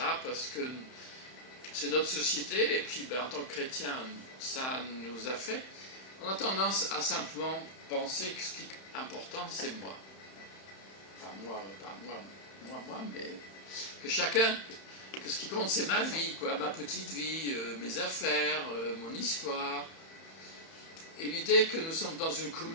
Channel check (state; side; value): late; right; 31 ms